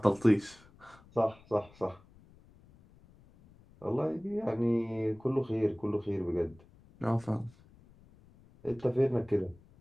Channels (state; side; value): noise; left; rumble, 26 dB below the sound